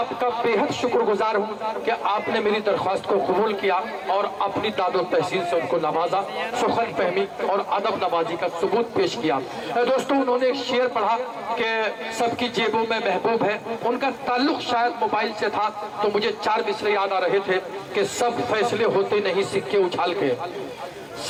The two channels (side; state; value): both; identical; correlation 1.00